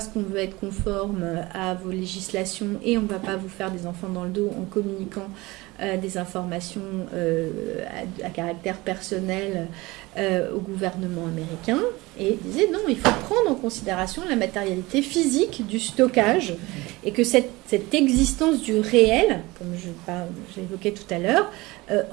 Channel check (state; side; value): quieter; left; 21.6 dB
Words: qu'on veut être conforme à vos législations et on ne va pas vous faire des enfants dans le dos en communiquant des informations à caractère personnel au gouvernement américain. Et disait non, il faut prendre en considération la matérialité physique du stockage et que cette existence du réel, comme j'évoquais tout à l'heure,